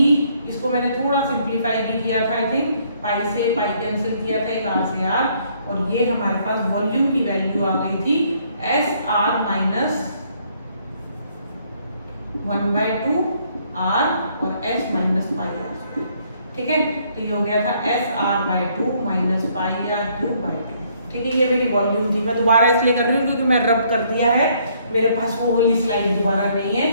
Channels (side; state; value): both; inverted; correlation -0.67